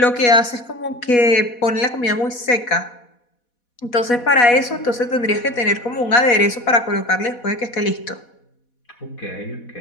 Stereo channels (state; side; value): late; right; 4.1 ms